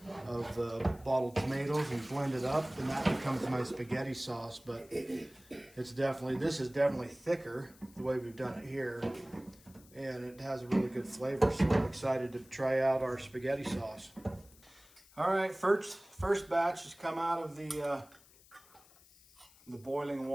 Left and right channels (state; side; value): noise; left; hiss, 25 dB below the sound